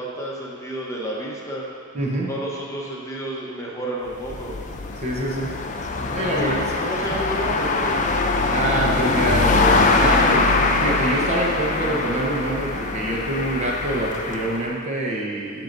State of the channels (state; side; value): normal; both; correlation 0.11